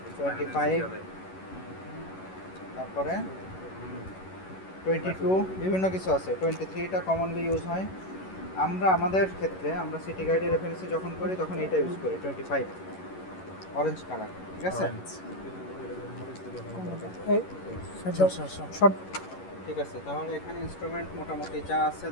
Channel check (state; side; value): late; right; 11 ms